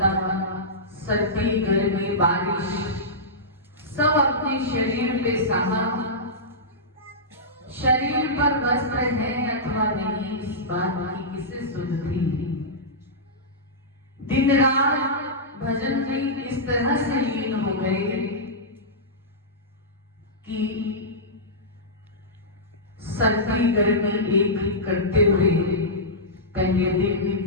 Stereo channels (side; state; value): both; normal; correlation -0.14